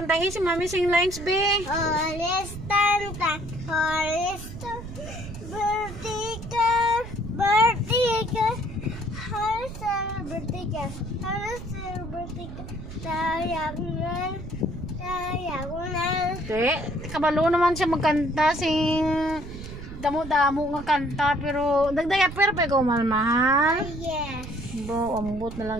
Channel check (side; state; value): right; noise; rumble, 11 dB below the sound